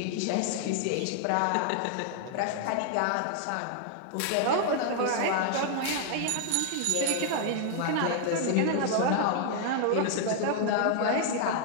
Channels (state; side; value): different; both; correlation 0.00